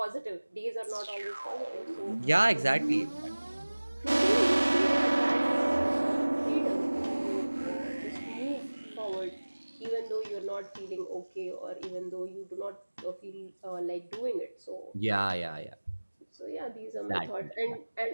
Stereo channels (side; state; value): both; inverted; correlation -1.00